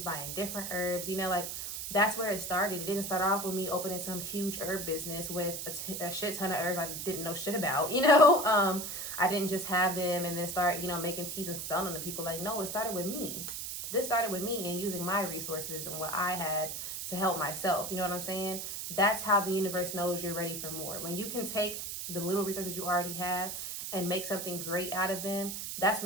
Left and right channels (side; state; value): right; noise; hiss, 5 dB below the sound